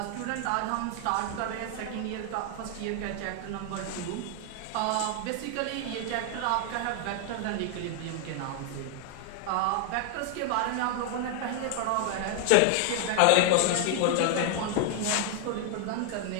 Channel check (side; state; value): both; different; correlation 0.00